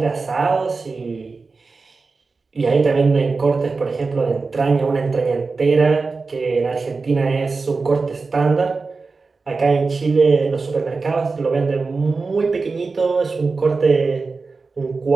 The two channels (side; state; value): left; quieter; 4.2 dB